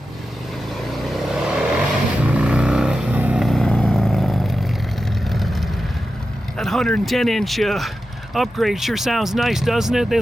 That 110-inch upgrade sure sounds nice, doesn't it?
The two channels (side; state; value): both; normal; correlation 0.91